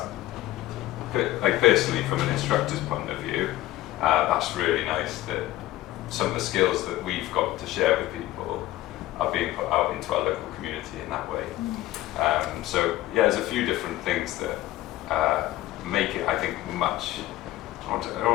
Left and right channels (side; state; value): right; quieter; 15.9 dB